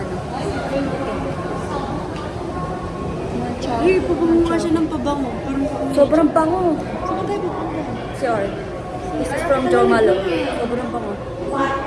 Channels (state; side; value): identical; both; correlation 1.00